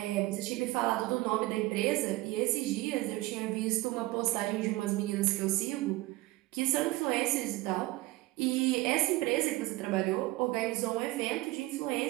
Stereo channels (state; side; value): quieter; left; 19.4 dB